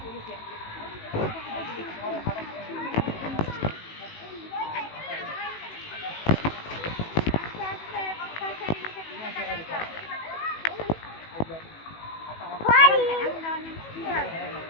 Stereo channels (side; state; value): right; late; 18 ms